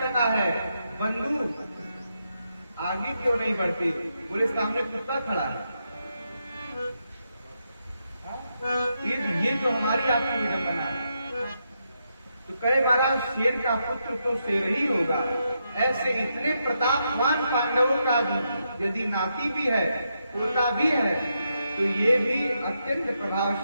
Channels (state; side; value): inverted; both; correlation -0.83